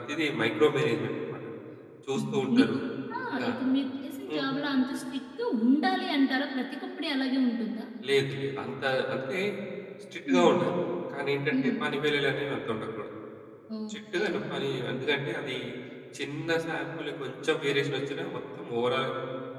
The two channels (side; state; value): both; identical; correlation 1.00